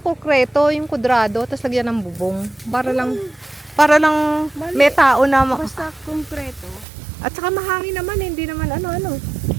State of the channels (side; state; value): left; drops out; at 6.9 s